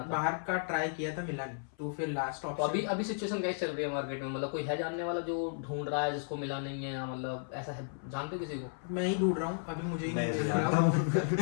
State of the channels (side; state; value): right; silent; 55 dB below the other